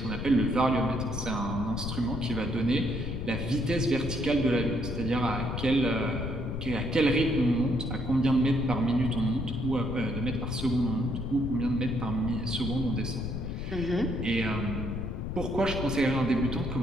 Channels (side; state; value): left; noise; rumble, 4 dB below the sound